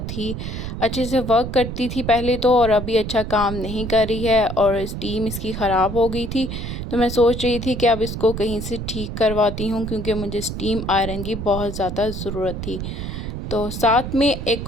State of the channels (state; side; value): noise; right; rumble, 6 dB below the sound